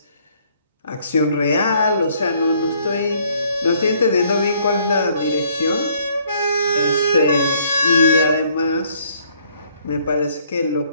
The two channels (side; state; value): both; inverted; correlation -0.64